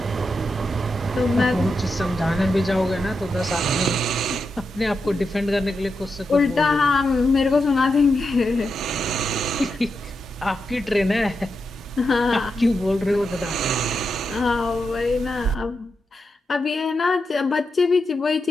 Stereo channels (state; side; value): normal; both; correlation 0.87